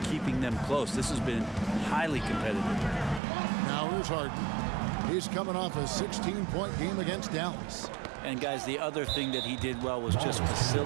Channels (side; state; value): left; drops out; at 3.2 s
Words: keeping them close. This has been highly competitive. Now here's Harden. He's coming off a 16-point game against Dallas. And guys, the other thing that he did well was just